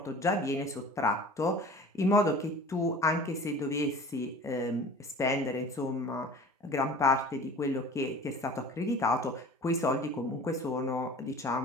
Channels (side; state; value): both; normal; correlation 0.42